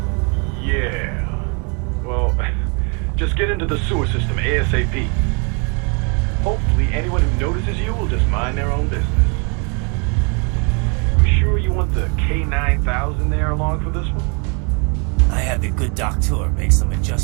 Yeah. Well, just get into the sewer system ASAP. Hopefully anyone who notices you will just mind their own business. You sure you want the K9000 there along for this one? I had the good doctor make some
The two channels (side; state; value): left; quieter; 34.9 dB